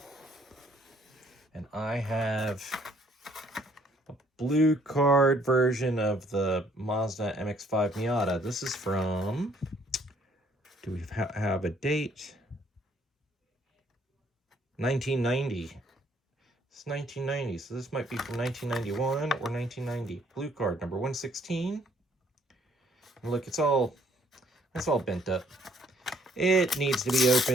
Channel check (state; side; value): normal; both; correlation 0.64